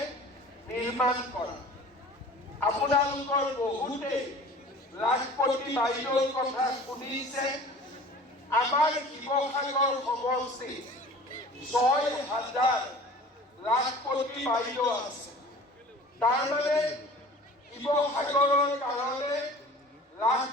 নিৰ্মাণ কৰা। আপোনালোকৰ বহুতে লাখপতি বাইদেউৰ কথা শুনিছে। আমাৰ শিৱসাগৰ সমষ্টি ৬,০০০ লাখপতি বাইদেউ আছে। তাৰমানে শিৱসাগৰৰ কাৰণে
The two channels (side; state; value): both; normal; correlation 0.44